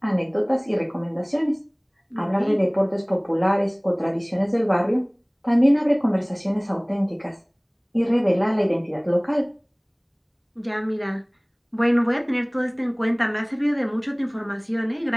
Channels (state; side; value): identical; both; correlation 1.00